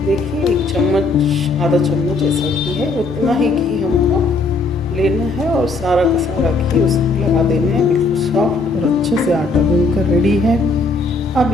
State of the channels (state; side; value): quieter; right; 3.6 dB